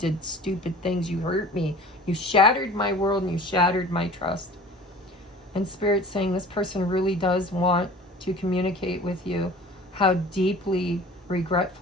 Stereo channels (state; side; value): normal; both; correlation 0.44